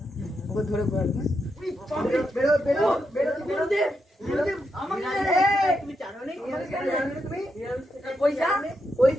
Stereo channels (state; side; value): normal; both; correlation 0.83